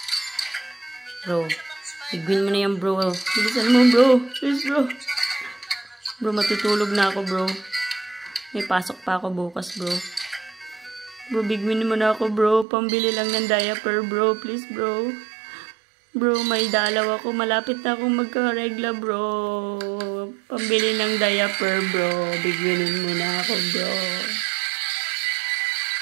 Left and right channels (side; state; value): left; drops out; at 12.7 s